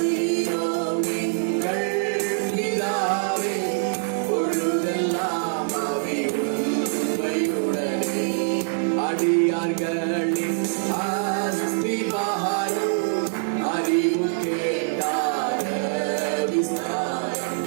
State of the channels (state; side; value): silent; left; digital silence